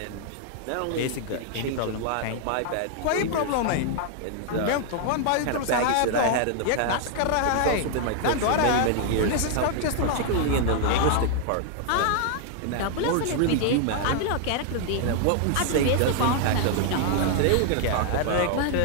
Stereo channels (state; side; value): different; both; correlation 0.00